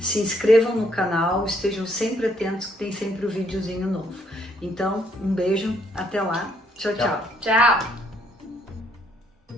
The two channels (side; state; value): both; normal; correlation 0.69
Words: inscrevam no canal, estejam sempre atentos que tem sempre um videozinho novo. Então, um beijo, até lá, tchau, tchau. Tchau!